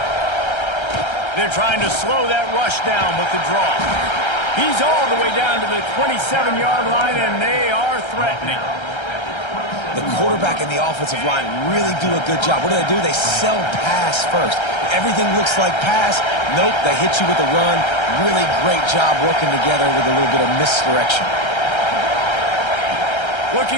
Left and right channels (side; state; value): right; late; 1.3 ms